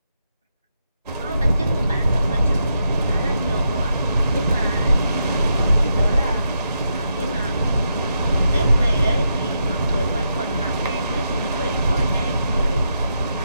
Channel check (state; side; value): inverted; both; correlation -0.82